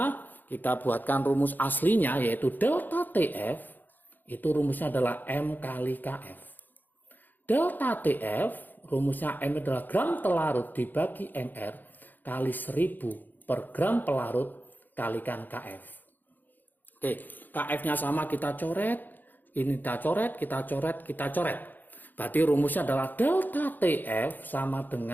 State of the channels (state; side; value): late; right; 0.087 ms